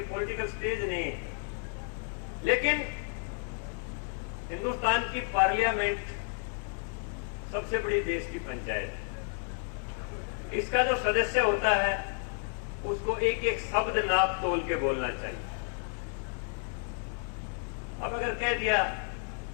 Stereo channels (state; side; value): silent; right; 57 dB below the other